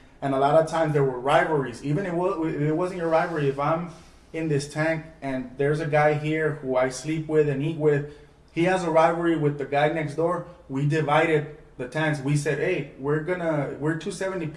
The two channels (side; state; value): both; identical; correlation 1.00